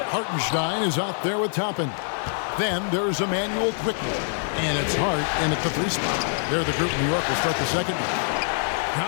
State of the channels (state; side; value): silent; right; digital silence